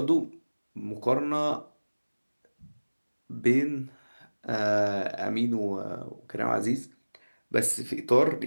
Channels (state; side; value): inverted; both; correlation -1.00